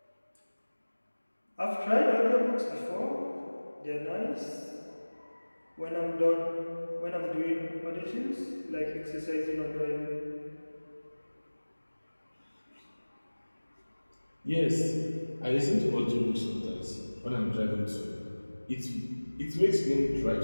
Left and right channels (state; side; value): inverted; both; correlation -1.00